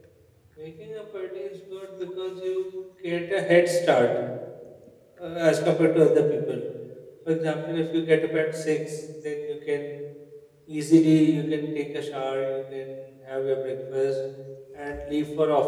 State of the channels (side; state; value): both; identical; correlation 1.00